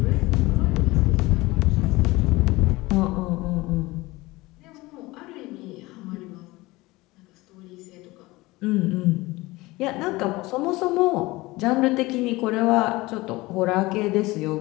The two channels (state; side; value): quieter; right; 20.8 dB